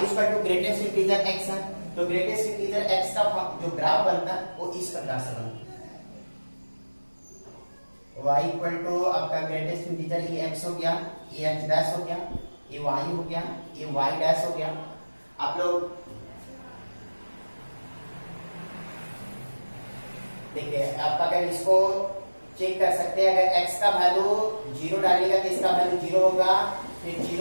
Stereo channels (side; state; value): both; inverted; correlation -1.00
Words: equal to greatest integer x है, तो ग्रेटेस्ट इंटीजर x का जो ग्राफ बनता है वो इस प्रकार से बनता है। y इक्वल टू आपका ग्रेटेस्ट इंटीजर ये x हो गया, ये x डैश हो गया, ये y हो गया, ये y डैश हो गया। आप लोग देखिए, आप अगर इसको चेक कर सकते हैं, अगर x का वैल्यू 0 डालिएगा तो इसका वैल्यू 0 होगा, फिर